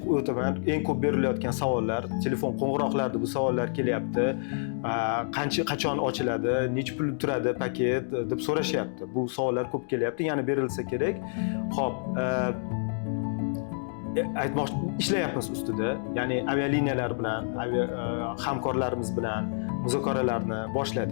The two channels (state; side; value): silent; right; digital silence